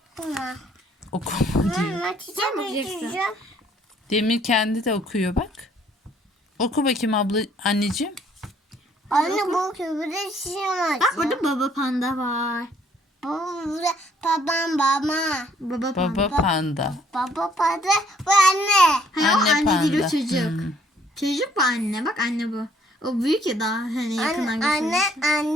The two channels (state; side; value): normal; both; correlation 0.63